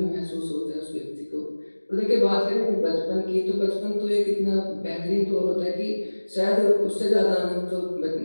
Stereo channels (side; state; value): both; inverted; correlation -1.00